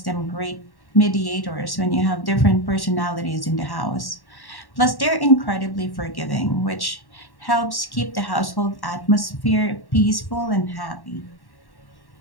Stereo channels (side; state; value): right; late; 1.1 ms